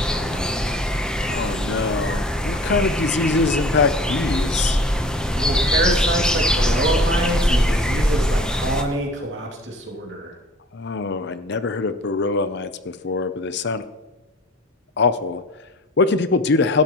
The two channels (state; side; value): normal; both; correlation 0.45